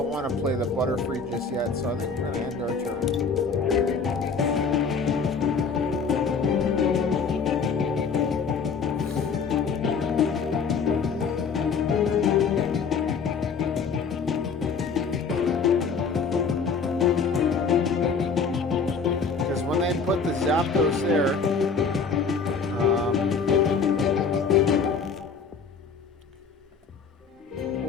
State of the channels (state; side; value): quieter; right; 5.3 dB